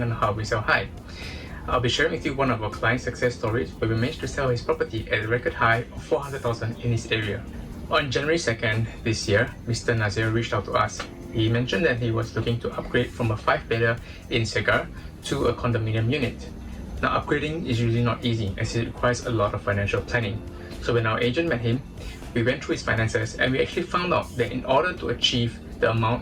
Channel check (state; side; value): identical; both; correlation 1.00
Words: on how we sell high. I'll be sharing with you one of our client success stories where we managed to sell his property at a record high of 400,000 in his area. On January 2nd this year, Mr. Nazir reached out to us. He mentioned that he was looking to upgrade from a 5-bedder in Segar to a condominium unit. Now, upgrading is usually not easy as it requires a lot of financial planning. So when our agent met him, we went through his finances and we actually found out that in order to achieve the